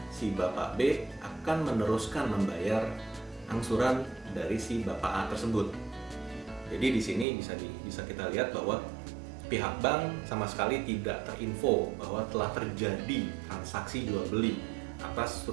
si Bapak B akan meneruskan membayar angsuran dari si Bapak A tersebut. Jadi di sini bisa kita lihat bahwa pihak bank sama sekali tidak terinfo bahwa telah terjadi transaksi jual beli atas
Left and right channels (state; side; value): drops out; left; at 7.2 s